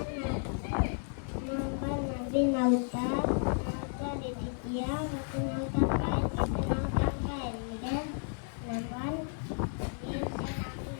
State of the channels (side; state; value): right; silent; 56 dB below the other